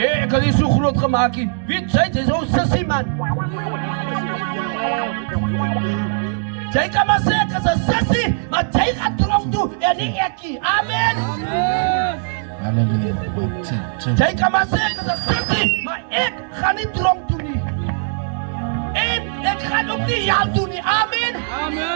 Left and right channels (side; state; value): left; silent; digital silence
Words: ek het nie so groot gemaak nie. Weet jy, jy is so sissie, man. Jy kan maar sê ek is 'n sissie, maar jy gaan tronk toe en nie ek nie. Amen. Halleluja. Jy kan maar sê ek is 'n sissie, maar ek gaan nie tronk toe nie. En ek gaan ook nie jou toe nie. Amen.